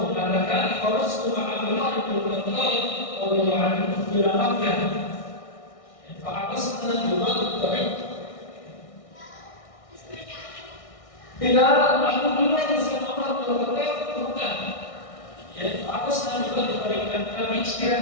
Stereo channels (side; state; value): right; late; 1.6 ms